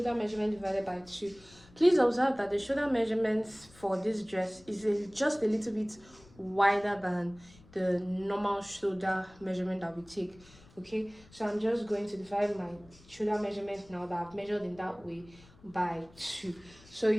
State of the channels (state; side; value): noise; left; rumble, 25 dB below the sound